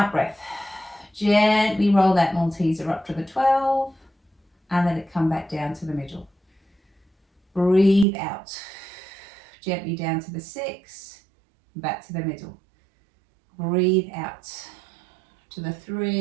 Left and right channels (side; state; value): left; drops out; at 8.1 s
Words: breath, gently roll that Malteser up to the 12, and let it come back down to the middle. Breathe out. Gently down to the 6, back to the middle. Breathe out to the